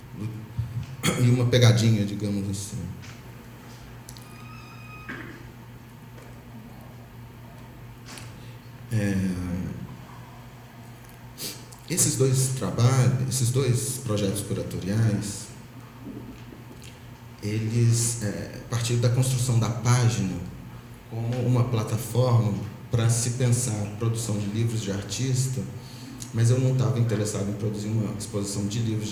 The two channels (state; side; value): identical; both; correlation 1.00